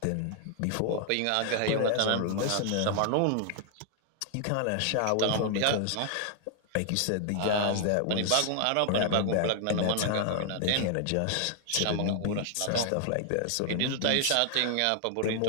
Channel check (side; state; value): both; different; correlation 0.00